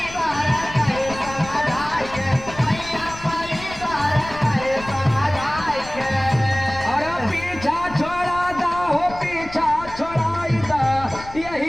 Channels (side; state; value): left; noise; rumble, 15 dB below the sound